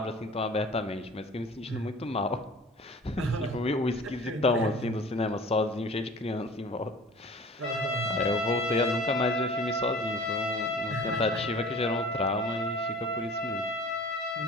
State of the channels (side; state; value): both; normal; correlation 0.43